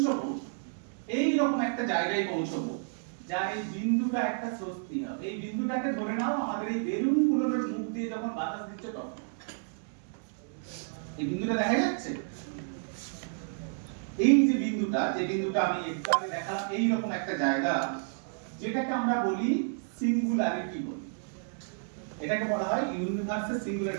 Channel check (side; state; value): left; silent; digital silence